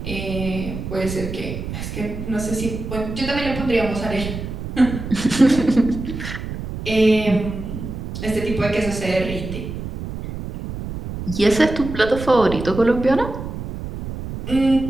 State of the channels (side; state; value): right; noise; rumble, 7 dB below the sound